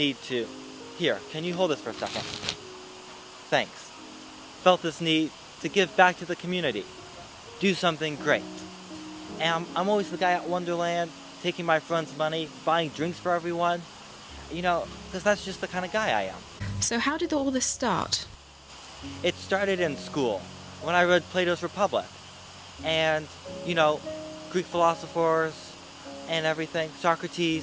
to... Here, can you hold this for a second? Thanks. Felt this need to give back to the community. Do something great. And I'm always the guy at Wonderland, taking my friends' money, buying drinks for everyone. You know, because that's just the kind of guy I am. So how did all this start? It started in school, when I read Plato's Republic. And, you know, Greek philosophers and everything,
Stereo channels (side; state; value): both; identical; correlation 1.00